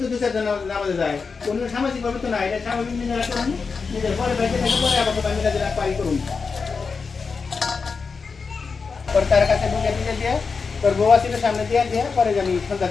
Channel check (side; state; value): right; quieter; 5.0 dB